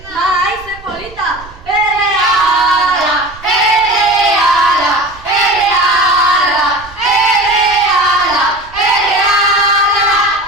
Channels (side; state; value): right; noise; rumble, 21 dB below the sound